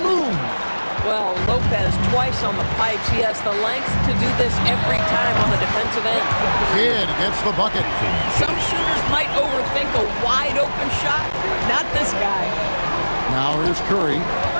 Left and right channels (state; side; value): inverted; both; correlation -1.00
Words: Well, Lopez twice on the pipes. He has the length to do this every time on the defensive end. Kidd gets the bucket. Some shooters might overthink a wide-open shot. Not this guy. Now here's Curry.